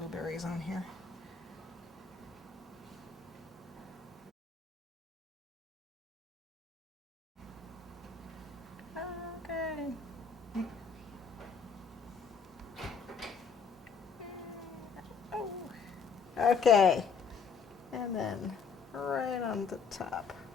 on here. Okay. Oh. Okay, and then right on the top.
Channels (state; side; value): quieter; right; 5.5 dB